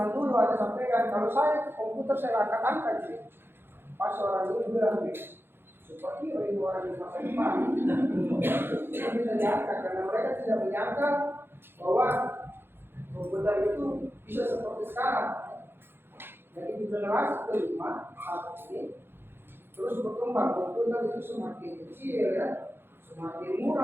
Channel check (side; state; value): left; late; 0.10 ms